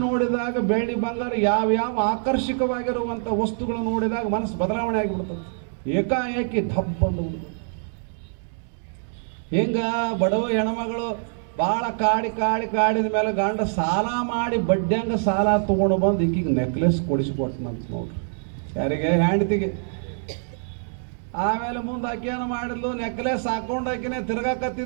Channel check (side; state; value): left; silent; digital silence